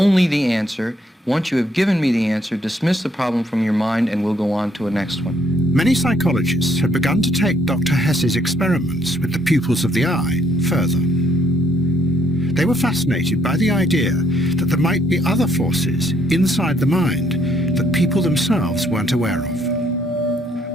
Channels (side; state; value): both; normal; correlation 0.69